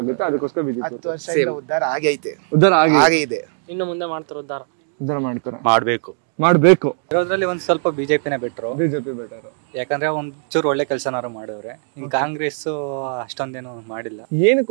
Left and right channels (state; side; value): silent; left; digital silence